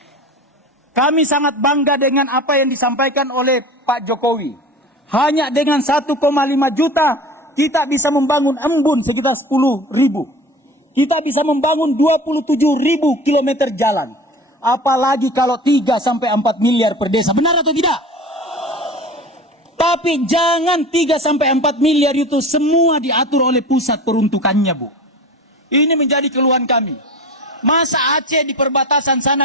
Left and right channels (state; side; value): normal; both; correlation 0.35